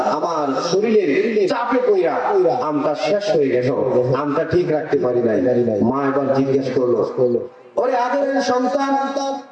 আমার শরীরের চাপে পইরা আমটা শেষ হয়ে গেল, আমটা ঠিক রাখতে পারি নাই। মা এবার জিজ্ঞেস করলো, ওরে আদরের সন্তান,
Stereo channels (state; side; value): identical; both; correlation 1.00